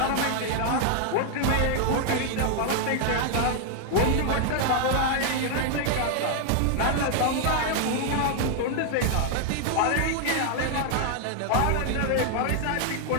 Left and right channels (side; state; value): both; different; correlation 0.00